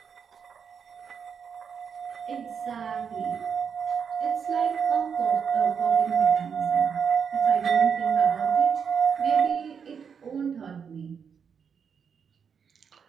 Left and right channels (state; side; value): quieter; left; 6.7 dB